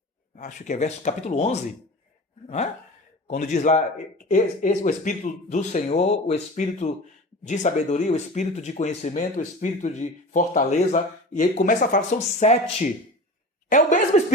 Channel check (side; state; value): both; normal; correlation 0.35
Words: Acho que é capítulo 11. Não é? Quando diz lá, o Espírito do Senhor, o Espírito de sabedoria, o Espírito de conhecimento, o Espírito de fortaleza. E ele começa a falar, são 7. É o mesmo